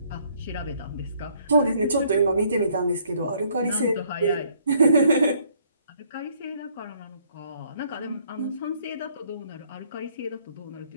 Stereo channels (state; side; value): inverted; both; correlation -0.65